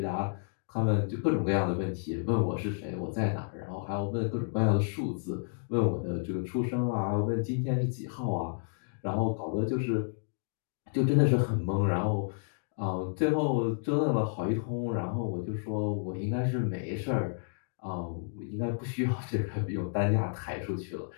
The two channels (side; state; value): right; silent; digital silence